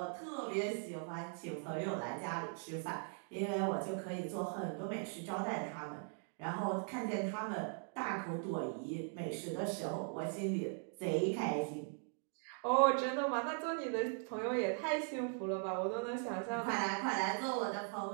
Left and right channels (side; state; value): left; silent; 51 dB below the other